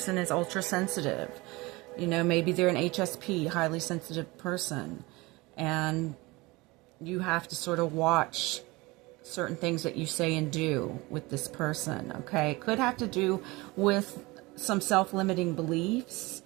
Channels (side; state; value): left; quieter; 22.9 dB